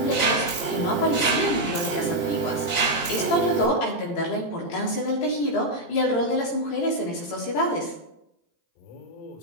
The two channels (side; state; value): right; late; 18 ms